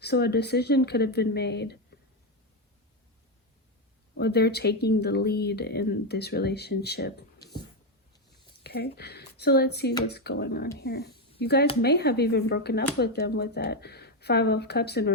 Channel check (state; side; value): normal; both; correlation 0.07